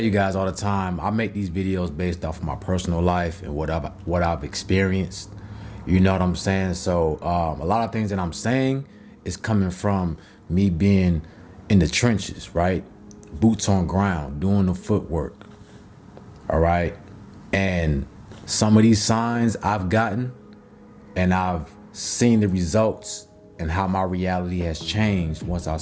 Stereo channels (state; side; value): identical; both; correlation 1.00